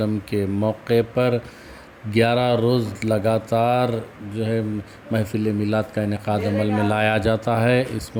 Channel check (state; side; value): identical; both; correlation 1.00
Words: کے موقع پر 11 روز لگاتار محفل میلاد کا انعقاد عمل میں لایا جاتا ہے۔ اس